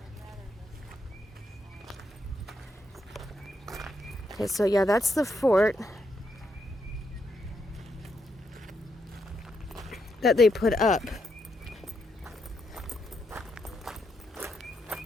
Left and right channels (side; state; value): both; normal; correlation 0.80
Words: Okay, so yeah, that's the fort. that they put up.